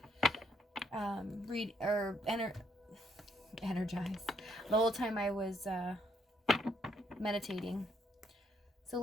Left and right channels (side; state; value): both; normal; correlation 0.71